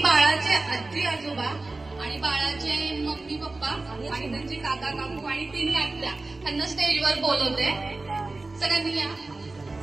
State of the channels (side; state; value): left; quieter; 3.3 dB